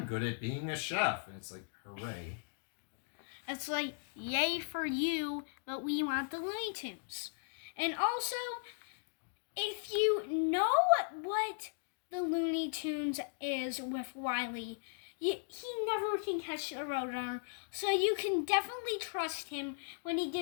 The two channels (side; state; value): right; silent; digital silence